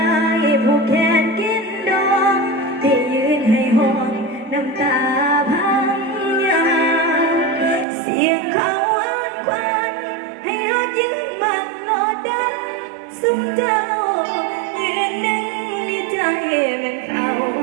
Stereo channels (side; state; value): left; drops out; at 7.9 s